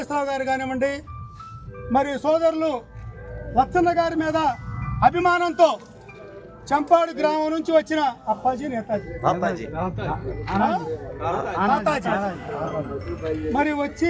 గారు కానివ్వండి, మరి సోదరులు లచ్చన్న గారి మీద అభిమానంతో చంపాడు గ్రామం నుంచి వచ్చిన అప్పాజీ నేతాజీ మరి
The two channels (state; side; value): identical; both; correlation 1.00